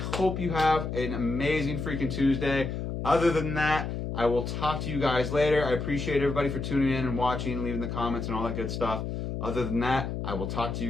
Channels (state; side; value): noise; left; hum, 4 dB below the sound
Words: you have an amazing freaking Tuesday. Other than that, I will talk to you guys later. I appreciate everybody for tuning in and watching, leaving the comments and all that good stuff. Other than that, I will talk to you